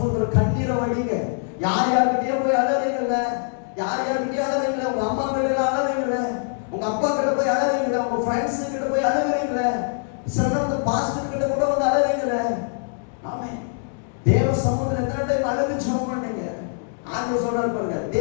கண்ணீரை வடிங்க. யார் யார்கிட்டயே போய் அழறீங்கல்ல, யார் யார்கிட்டயே அழறீங்கள, உங்க அம்மா கிட்ட அழறீங்கள, உங்க அப்பா கிட்ட போய் அழறீங்கள, உங்க ஃப்ரெண்ட்ஸ் கிட்ட போய் அழறீங்கள, சில பாஸ்டர் கிட்ட கூட வந்து அழறீங்கள. ஆமென். தேவ சமூகத்துல எத்தனை டைம் அழுது ஜெபம் பண்ணீங்க? ஆண்டவர் சொல்றாரு பாருங்க,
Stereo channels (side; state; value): right; silent; 63 dB below the other